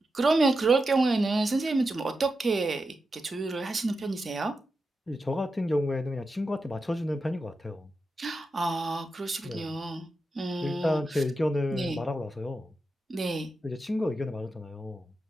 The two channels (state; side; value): normal; both; correlation 0.89